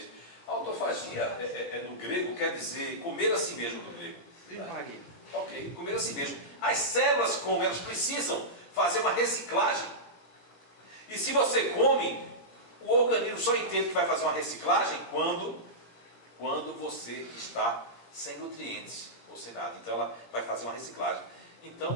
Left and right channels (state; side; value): late; right; 17 ms